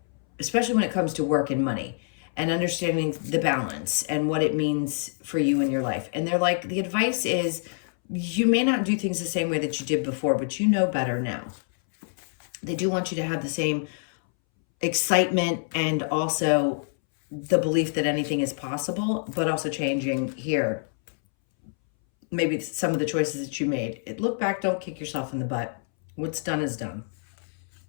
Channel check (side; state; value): right; silent; 61 dB below the other